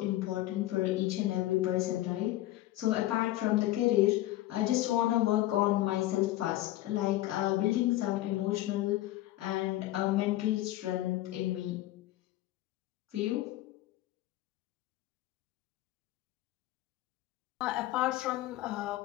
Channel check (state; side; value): quieter; right; 15.9 dB